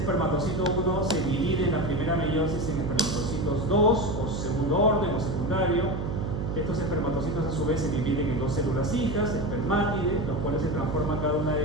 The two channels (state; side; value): noise; right; hum, 3 dB below the sound